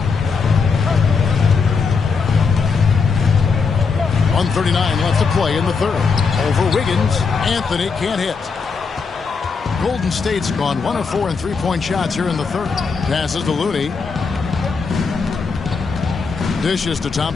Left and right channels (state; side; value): quieter; right; 5.1 dB